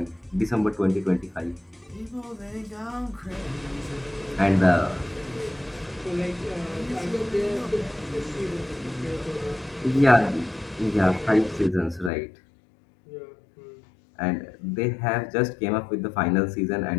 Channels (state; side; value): drops out; right; at 12.1 s